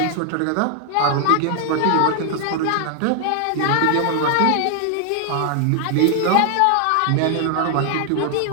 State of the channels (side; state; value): both; different; correlation 0.00